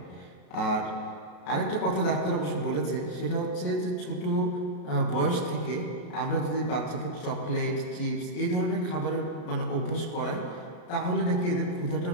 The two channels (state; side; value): late; right; 33 ms